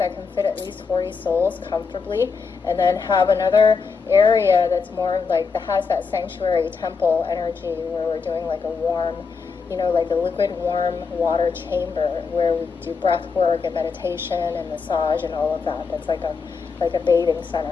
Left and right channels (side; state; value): right; quieter; 5.2 dB